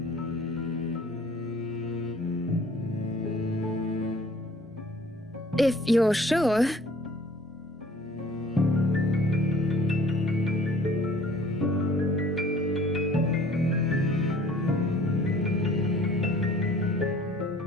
if you're sure.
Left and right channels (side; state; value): both; normal; correlation 0.52